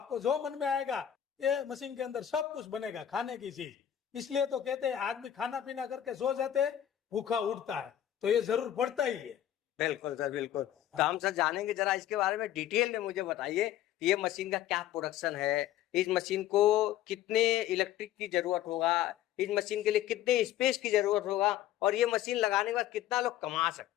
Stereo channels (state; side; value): quieter; right; 11.5 dB